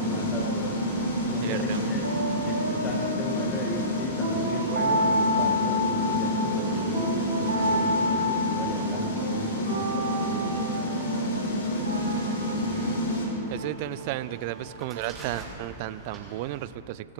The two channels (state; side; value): inverted; both; correlation -0.32